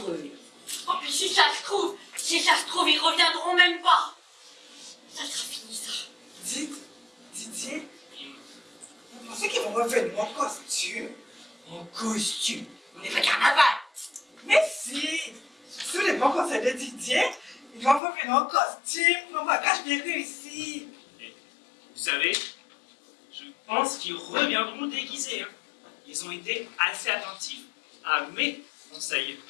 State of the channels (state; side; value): drops out; right; at 18.0 s